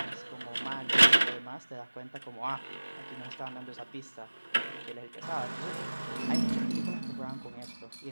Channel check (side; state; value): both; inverted; correlation -1.00